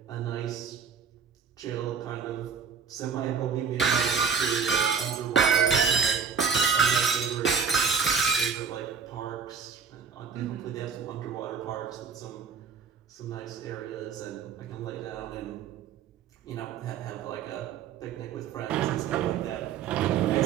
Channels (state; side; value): quieter; left; 6.3 dB